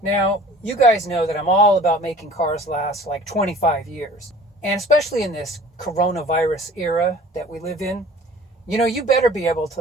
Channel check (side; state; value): both; normal; correlation 0.47